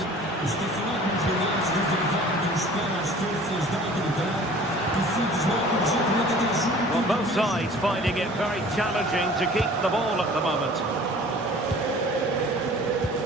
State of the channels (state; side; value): normal; both; correlation 0.47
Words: Well, both sides finding it very challenging to keep the ball at the moment.